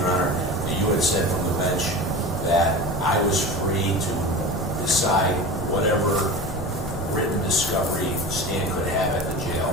Honor, that you had said from the bench that I was free to decide whatever written discovery Stan could have at the jail.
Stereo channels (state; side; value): normal; both; correlation 0.32